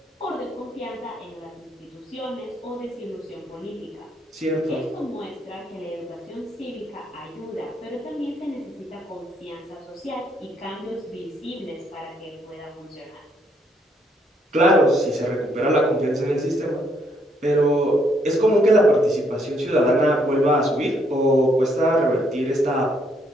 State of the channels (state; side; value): normal; both; correlation 0.71